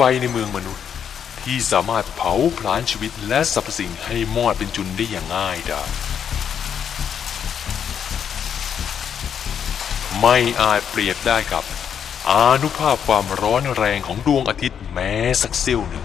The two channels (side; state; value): right; quieter; 8.1 dB